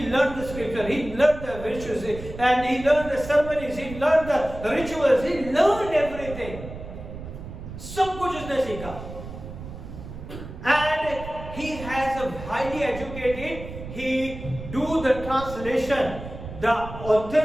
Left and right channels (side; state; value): right; noise; rumble, 11 dB below the sound